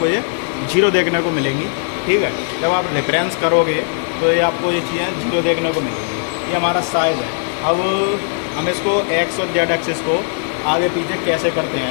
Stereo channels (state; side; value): silent; right; 62 dB below the other